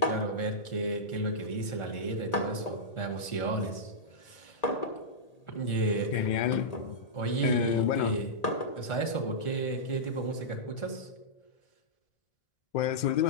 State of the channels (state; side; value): late; right; 1.4 ms